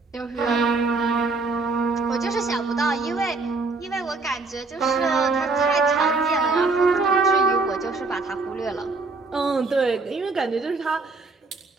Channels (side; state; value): left; quieter; 3.8 dB